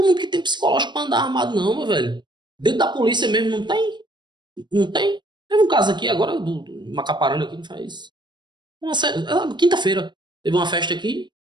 mundo que tem psicológico pra andar armado, não, meu velho. Dentro da polícia mesmo não tem. Não tem. Teve um caso aqui agora, do Macaparana aqui, não faz... Quinta-feira. Teve uma festa aqui.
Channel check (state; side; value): late; left; 0.22 ms